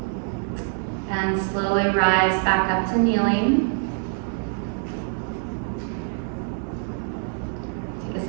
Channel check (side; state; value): left; silent; 62 dB below the other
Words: And slowly rise back up to kneeling. Take a